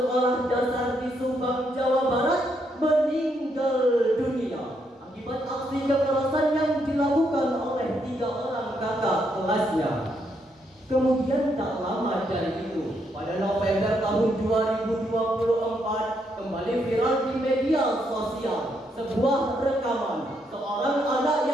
dasar di Subang, Jawa Barat meninggal dunia akibat aksi kekerasan yang dilakukan oleh 3 orang kakak kelasnya. Kemudian tak lama dari itu, pada November tahun 2024, kembali viral di media sosial sebuah rekaman seorang anak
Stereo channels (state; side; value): normal; both; correlation 0.76